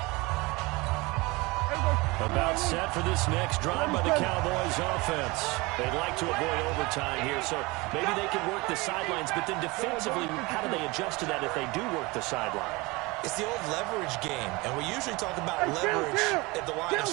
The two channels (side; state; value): left; quieter; 24.0 dB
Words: About set for this next drive by the Cowboys offense. They'd like to avoid overtime here, so maybe they can work the sidelines, but then defensively, how do they adjust to that if they do work the sideline? It's the old leverage game, and we usually talk about leverage at the line of